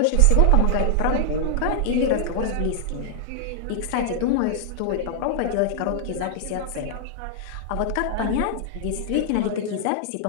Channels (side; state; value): both; different; correlation -0.01